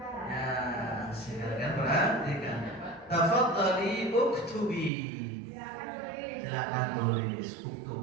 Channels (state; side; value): drops out; left; at 4.9 s